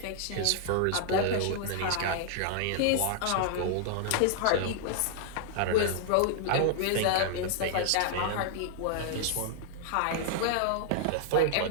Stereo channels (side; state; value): both; different; correlation -0.01